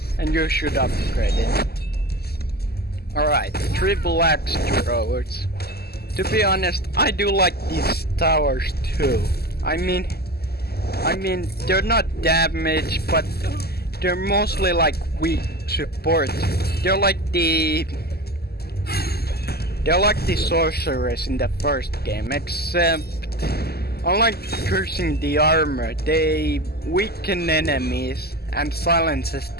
and you should upgrade it. Alright, triple axe throwers. To be honest, I do like these towers too. I mean, they're not damaged, but they're mostly like weak support. They're like the sorcerers in the first game, except unlike cursing the armor, they weaken enemies and silences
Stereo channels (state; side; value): late; right; 0.46 ms